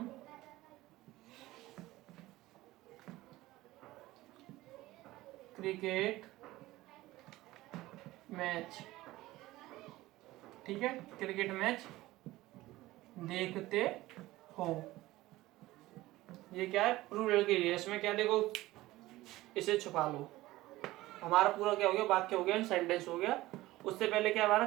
क्रिकेट मैच, ठीक है, क्रिकेट मैच देखते हो। ये क्या है प्लूरल के लिए। इसमें क्या देखो, इसे छुपा लो, हमारा पूरा क्या हो गया वाक्य हो गया, सेंटेंस हो गया। उससे पहले क्या हमारा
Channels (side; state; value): left; quieter; 17.7 dB